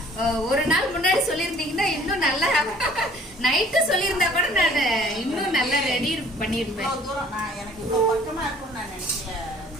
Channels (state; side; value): normal; both; correlation 0.55